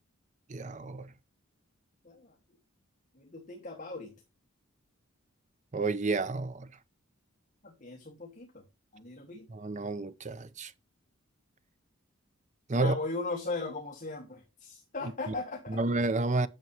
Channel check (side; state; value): both; normal; correlation 0.37